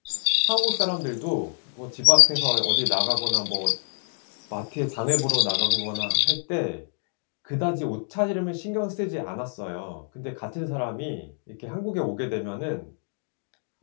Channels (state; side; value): silent; right; 61 dB below the other